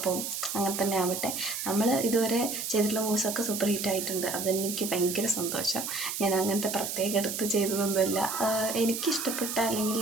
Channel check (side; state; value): right; noise; hiss, 4 dB below the sound